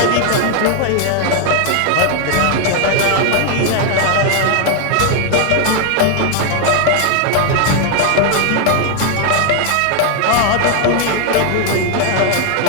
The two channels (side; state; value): both; different; correlation 0.00